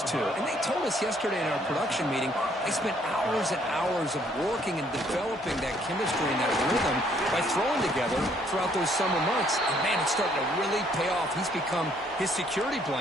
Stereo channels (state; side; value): normal; both; correlation 0.65